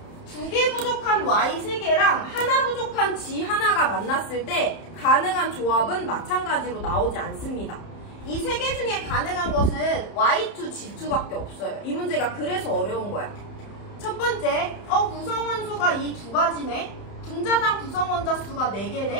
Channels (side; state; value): right; late; 31 ms